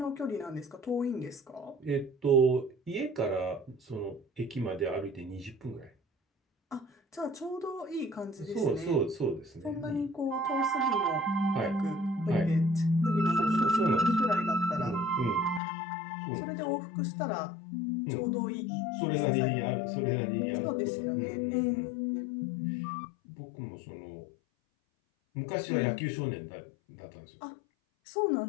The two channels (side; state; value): right; drops out; at 15.6 s